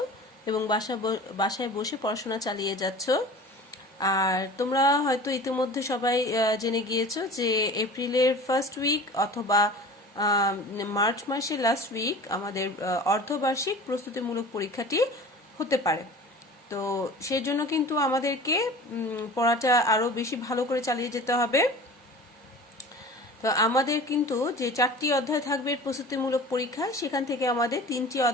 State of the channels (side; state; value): both; normal; correlation 0.39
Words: এবং বাসায় বসে পড়াশোনা চালিয়ে যাচ্ছ। আর তোমরা হয়তো ইতিমধ্যে সবাই জেনে গিয়েছো যে এপ্রিলের ফার্স্ট উইক অথবা মার্চ মাসের লাস্ট উইক আমাদের অর্ধবার্ষিক প্রস্তুতিমূলক পরীক্ষাটি হতে পারে। তো সেই জন্য কিন্তু আমাদেরকে পড়াটা আরও বেশি ভালো করে চালিয়ে যেতে হবে। তো আমাদের কিন্তু যে 4টি অধ্যায় থাকবে প্রস্তুতিমূলক পরীক্ষা, সেখান থেকে আমাদের 3টি